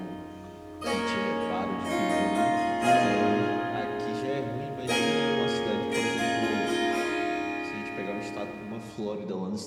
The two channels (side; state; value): both; identical; correlation 1.00